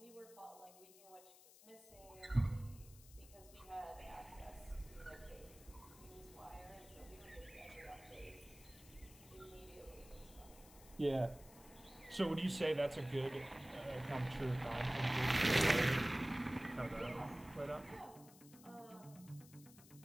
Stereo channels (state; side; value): noise; left; hiss, 21 dB below the sound